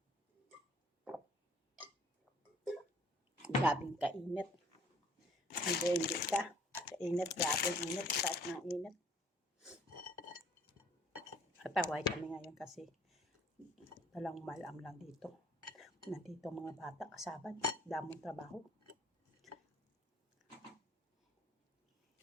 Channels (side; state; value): both; normal; correlation 0.58